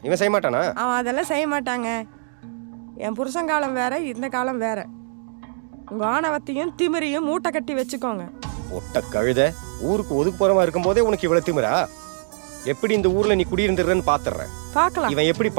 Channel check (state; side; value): silent; left; digital silence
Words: இவன் செய்ய மாட்டானா? அவன் அதெல்லாம் செய்ய மாட்டாங்க. என் புருஷன் காலம் வேற, இந்த காலம் வேற. உங்கள் ஆணவத்தையும் திமிரையும் மூட்டை கட்டி வச்சுக்கோங்க. ஒட்ட கழுத, ஊருக்கு ஒதுக்கு போறமா இருக்கும் போதே உனக்கு இவ்வளவு திமிரா? எப்படி இந்த ஊர்ல நீ குடியிருந்துடுறன்னு பாத்துறேன். பார்க்கலாம், இவன் எப்படி